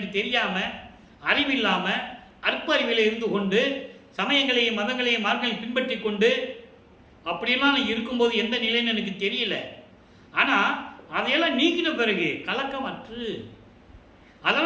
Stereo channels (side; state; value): both; identical; correlation 1.00